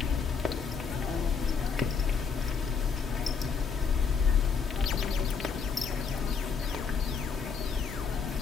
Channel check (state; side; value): quieter; right; 5.7 dB